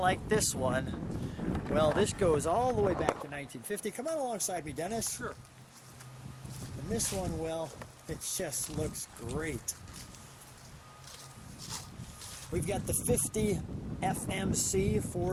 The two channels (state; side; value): identical; both; correlation 1.00